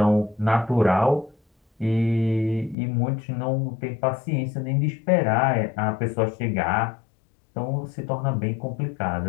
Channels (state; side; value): drops out; right; at 2.8 s